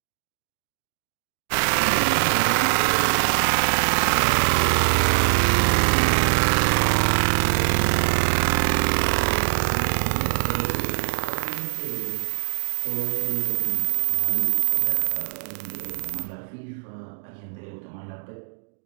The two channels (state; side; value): silent; left; digital silence